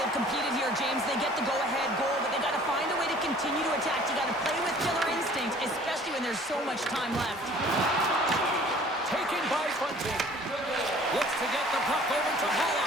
competed here, James. They get the go-ahead goal, but they got to find a way to continue to attack. You got to play with killer instinct, especially when there's so much time left. Taken by Bunting. Looks to get the puck over to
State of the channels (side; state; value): both; normal; correlation 0.51